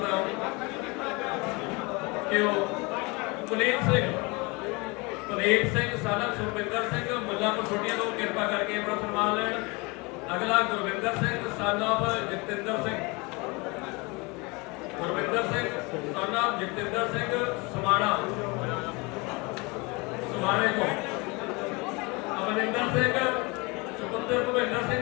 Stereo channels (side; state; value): right; quieter; 26.9 dB